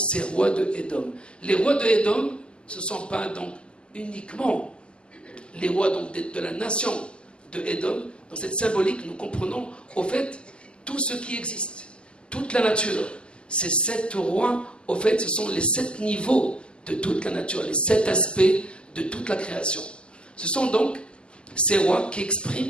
rois de Édom. Les rois de Édom, ce ne sont pas donc uniquement les rois donc de la nation de Édom. Dans cette symbolique, nous comprenons au fait tout ce qui existe, toute la nature. Ces 7 rois, au fait, ce sont les 7 niveaux de toute la nature, les 7 aspects de toute la création. Ce sont donc ces rois qui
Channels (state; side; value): late; right; 0.050 ms